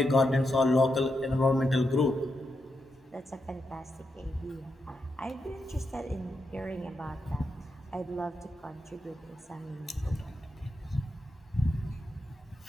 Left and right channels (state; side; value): normal; both; correlation 0.85